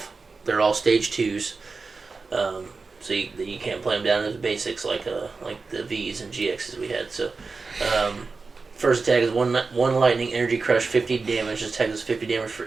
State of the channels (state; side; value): quieter; left; 4.3 dB